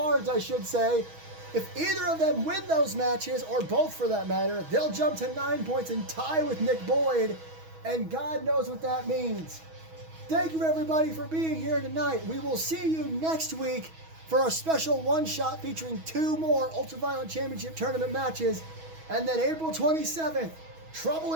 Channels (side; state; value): left; late; 6.2 ms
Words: I should say. If either of them win those matches, or both for that matter, they'll jump to 9 points and tie with Nick Boyd. And God knows what that means. Thank you, everybody, for being here tonight. We will see you next week for a special one-shot featuring 2 more Ultraviolent Championship Tournament matches. And then April 27th, Trouble